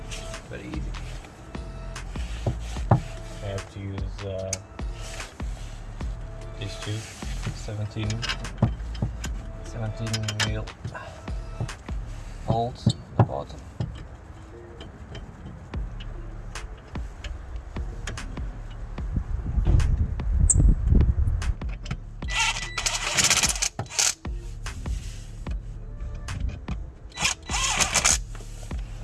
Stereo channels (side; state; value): both; identical; correlation 1.00